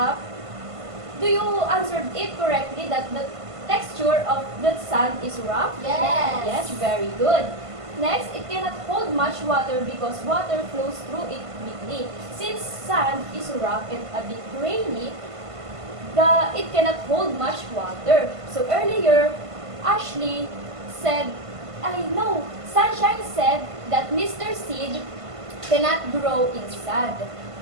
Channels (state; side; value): late; left; 1.5 ms